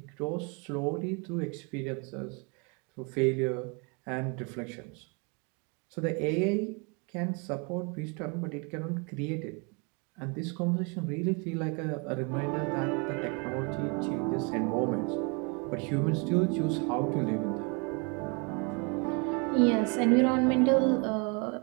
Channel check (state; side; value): quieter; left; 33.1 dB